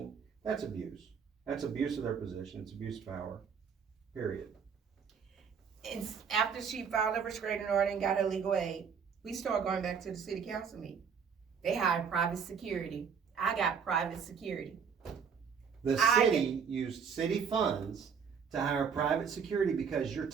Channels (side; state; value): left; quieter; 6.6 dB